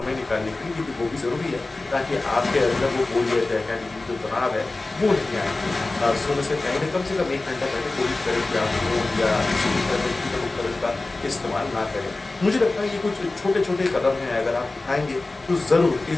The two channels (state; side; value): quieter; right; 3.2 dB